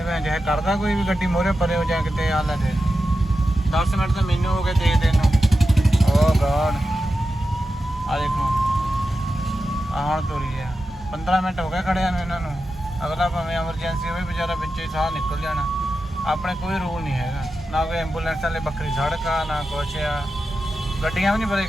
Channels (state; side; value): normal; both; correlation 0.91